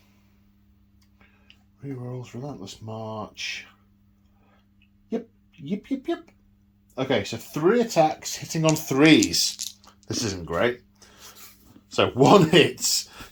Relentless March. Yep. Okay, so 3 attacks hitting on 3s. This isn't great. So 1 hits,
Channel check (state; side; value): identical; both; correlation 1.00